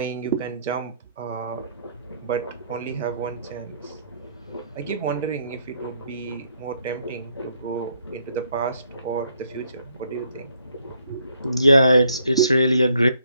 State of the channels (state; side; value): inverted; both; correlation -0.69